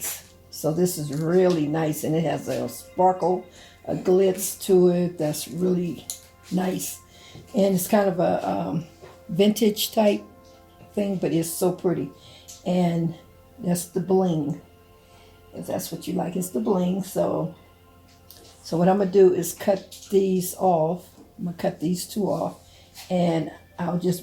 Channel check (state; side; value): identical; both; correlation 1.00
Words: So this is really nice, and it has a sparkle, a glitz to it that's really nice. And it's kind of a vintage type thing, but it's so pretty. And that's the bling, if that's what you like. It's the bling. So what I'm going to do is cut these off. I'm going to cut these two off, and I'll